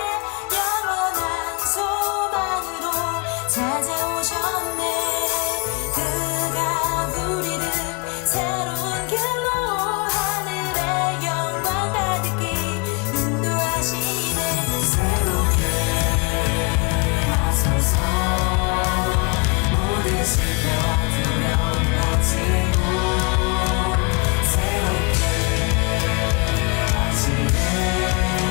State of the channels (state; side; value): quieter; right; 29.8 dB